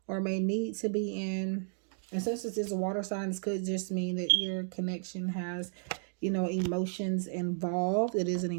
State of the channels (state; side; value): silent; left; digital silence